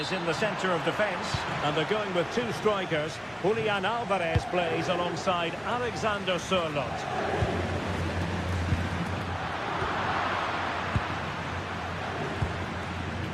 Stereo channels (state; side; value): identical; both; correlation 1.00